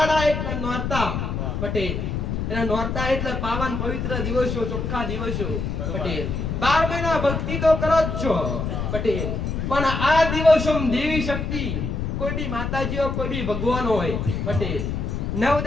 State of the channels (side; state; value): left; noise; rumble, 2 dB below the sound